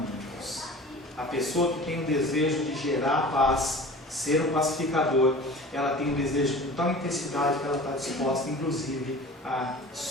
A pessoa que tem o desejo de gerar paz, ser um pacificador, ela tem um desejo com tal intensidade que ela está disposta, inclusive, a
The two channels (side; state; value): both; normal; correlation 0.40